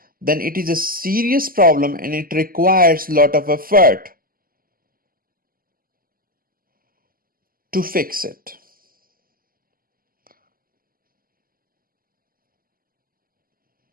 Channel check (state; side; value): late; left; 0.42 ms